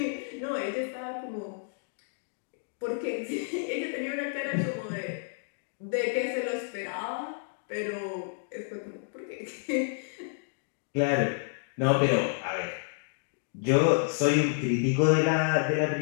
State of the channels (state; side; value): silent; right; digital silence